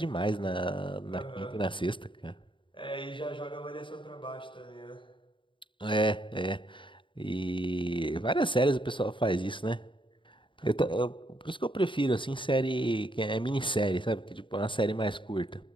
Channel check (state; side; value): late; right; 0.24 ms